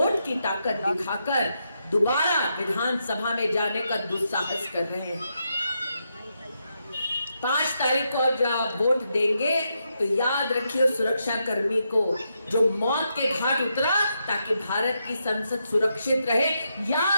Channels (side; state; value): both; inverted; correlation -0.83